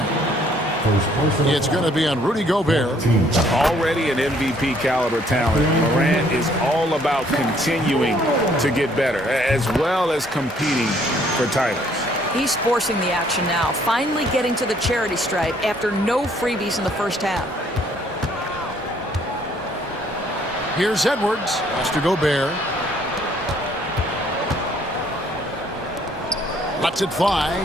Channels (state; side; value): normal; both; correlation 0.63